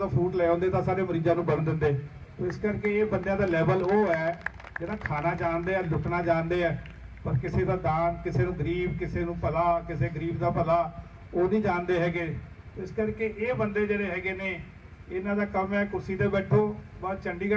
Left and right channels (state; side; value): identical; both; correlation 1.00